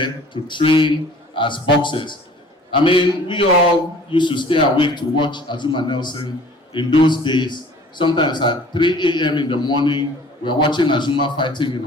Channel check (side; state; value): both; normal; correlation 0.50